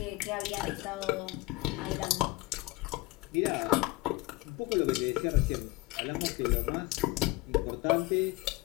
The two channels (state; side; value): quieter; right; 20.4 dB